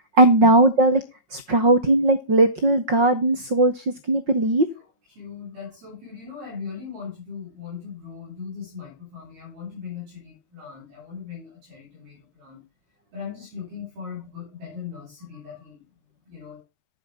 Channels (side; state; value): left; late; 5.5 ms